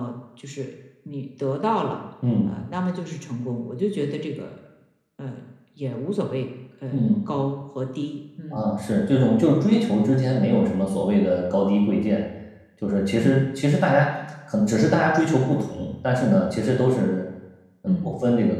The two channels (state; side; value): identical; both; correlation 1.00